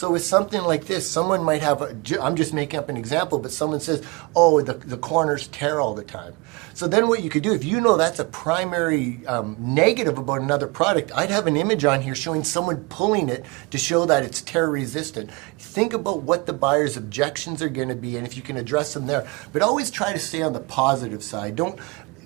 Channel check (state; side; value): quieter; left; 26.2 dB